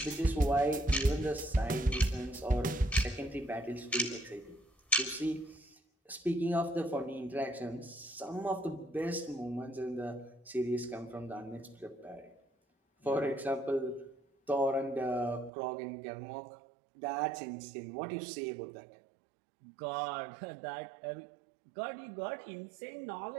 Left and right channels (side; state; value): left; drops out; at 15.5 s